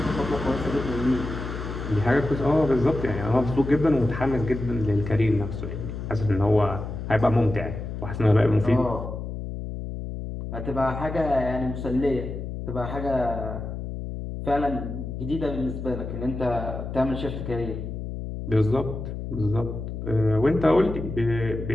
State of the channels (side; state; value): left; noise; hum, 6 dB below the sound